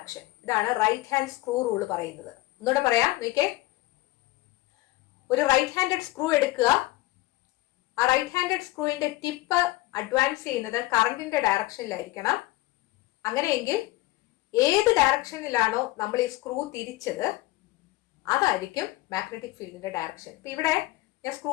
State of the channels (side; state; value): right; quieter; 18.8 dB